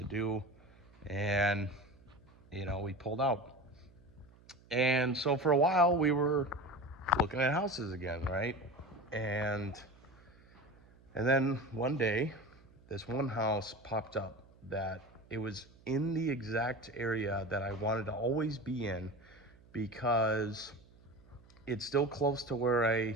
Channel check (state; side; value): noise; right; hum, 26 dB below the sound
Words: do. And we pulled out. And so for a while we were looking at houses again, right? And then one day this one house popped up that it was in the exact area that I wanted to always be in, because it's still close to where